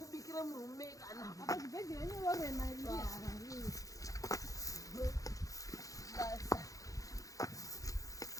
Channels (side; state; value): right; late; 0.17 ms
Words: murume kana apa zvibhedhera nyorena